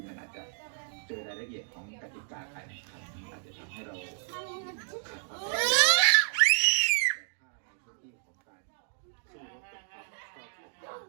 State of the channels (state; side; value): silent; left; digital silence